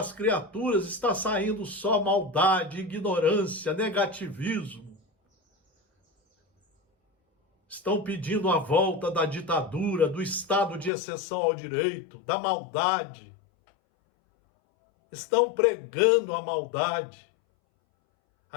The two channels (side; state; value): right; drops out; at 10.9 s